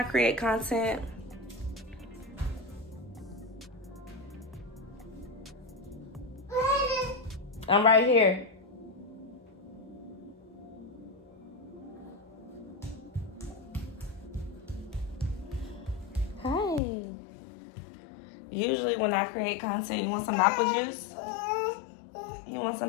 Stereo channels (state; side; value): drops out; right; at 16.8 s